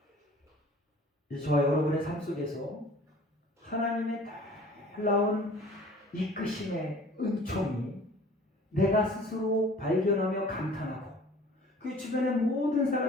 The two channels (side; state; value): both; normal; correlation 0.48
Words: 저와 여러분의 삶 속에서 하나님의 놀라운 이끄심의 은총이 내가 스스로 발견하며 감탄하고 그 주변의 모든